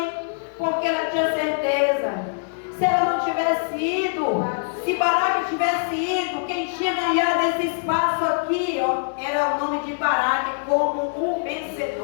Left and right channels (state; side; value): silent; right; digital silence